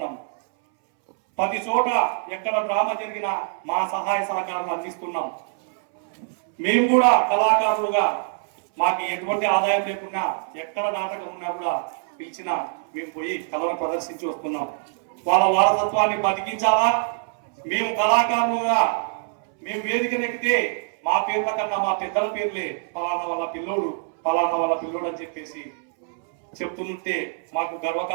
ప్రతి చోట ఎక్కడ డ్రామా జరిగినా మా సహాయ సహకారాలు అందిస్తున్నాం. మేము కూడా కళాకారులుగా మాకు ఎటువంటి ఆదాయం లేకున్నా ఎక్కడ నాటకం ఉన్నా కూడా పిలిచినా మేము పోయి కళను ప్రదర్శించి వస్తున్నాం. వాళ్ళ వారసత్వాన్ని బతికించాలా, మేము కళాకారులుగా మేము వేదిక నెక్కితే మా పేర్ల కన్నా మా పెద్దల పేర్లే పలానా వాళ్ళ పిల్లోడు పలానా వాళ్ళ పిల్లోడు అని చెప్పేసి చెప్తుంటే మాకు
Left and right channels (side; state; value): left; silent; 62 dB below the other